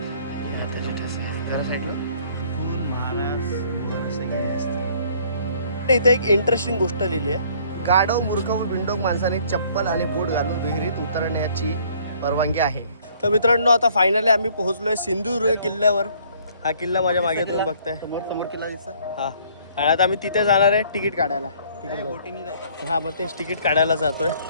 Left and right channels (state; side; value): inverted; both; correlation -0.59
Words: हाताचे ठसे जरा साईडला फुल महाराज वर सगळे असते. इथे एक इंटरेस्टिंग गोष्ट लिहिली आहे. गाढव मूर्ख व बिंडोक माणसाने चप्पल आणि बूट घालून विहिरीत उतरण्याची परवानगी आहे. तर मित्रांनो आता फायनली आम्ही पोहोचलोय सिंधुदुर्ग किल्ल्यावर. हा किल्ला माझ्या मागे तुम्ही बघताय, समोर किल्ला दिसतोय. हा, आणि आता आम्ही तिथे जाणार आहे तिकीट काढायला. हा, मग तेच तिकीट काढायला जातोय.